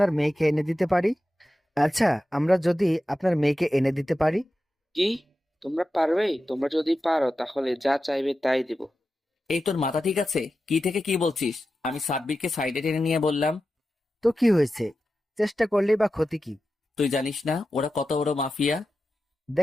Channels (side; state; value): both; normal; correlation 0.92